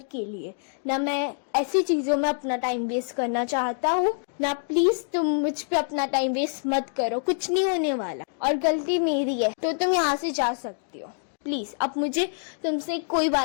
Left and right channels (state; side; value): silent; right; digital silence